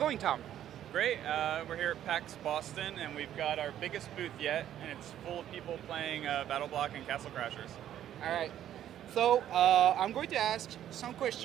Tom? Great. We're here at PAX Boston, and we've got our biggest booth yet, and it's full of people playing Battle Block and Castle Crashers. All right. So I'm going to ask some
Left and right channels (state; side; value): quieter; left; 11.2 dB